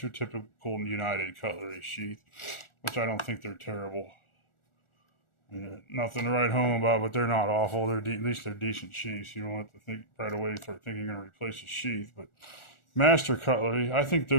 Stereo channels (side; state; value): right; late; 1.4 ms